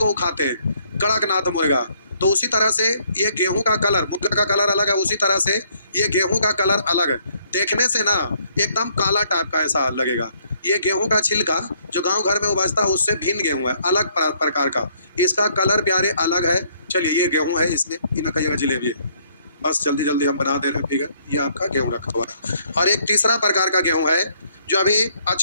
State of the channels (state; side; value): inverted; both; correlation -0.66